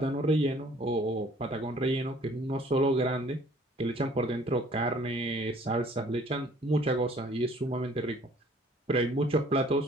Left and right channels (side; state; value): both; normal; correlation 0.56